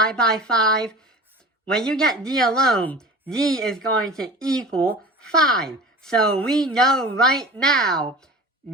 by 5. When you get d alone, d is going to equal 5. So we know right now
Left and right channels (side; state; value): both; normal; correlation 0.37